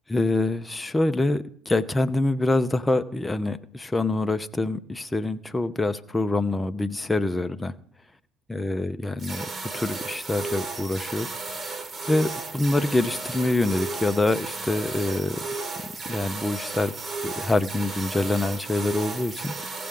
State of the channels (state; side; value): normal; both; correlation 0.90